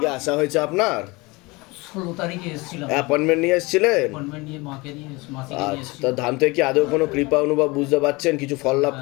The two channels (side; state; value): right; quieter; 24.4 dB